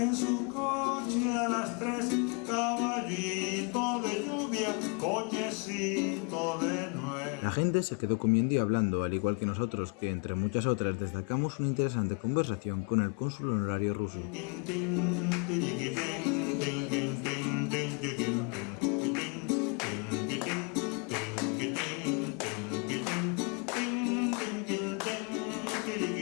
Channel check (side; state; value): right; quieter; 35.4 dB